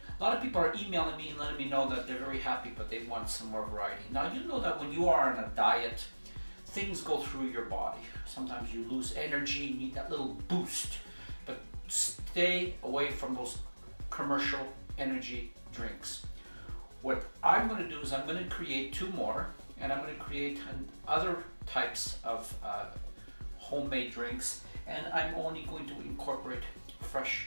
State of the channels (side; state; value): both; inverted; correlation -1.00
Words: a lot of people are emailing me and letting me know that they're very happy, but they want some more variety. Now, you know that when you are on a diet, things go through your body. Sometimes you lose energy, you need that little boost, but stay away from those commercial energy drinks. What I'm going to do is I'm going to create two more, and I'm going to create other types of homemade drinks, and I'm only going to incorporate fresh